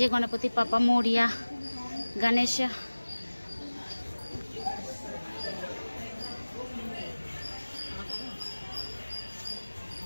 গণপতি বাপ্পা মোরিয়া, গণেশা।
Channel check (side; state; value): both; inverted; correlation -1.00